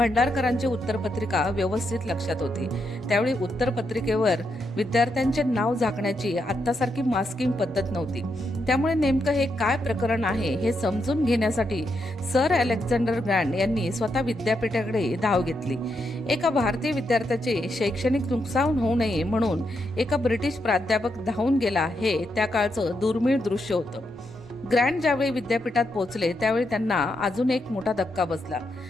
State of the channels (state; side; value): normal; both; correlation 0.81